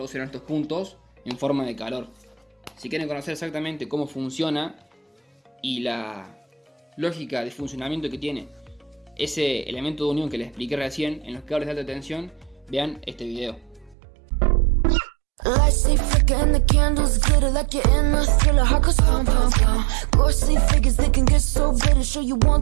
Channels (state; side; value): drops out; left; at 14.0 s